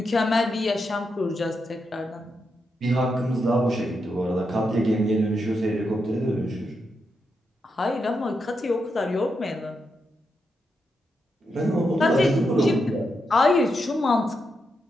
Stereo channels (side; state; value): both; normal; correlation 0.84